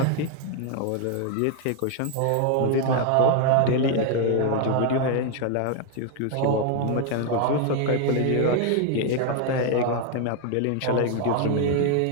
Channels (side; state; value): both; different; correlation 0.00